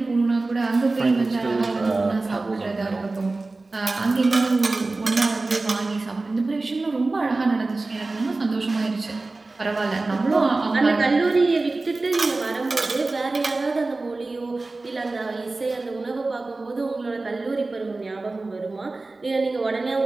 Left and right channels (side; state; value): left; quieter; 3.3 dB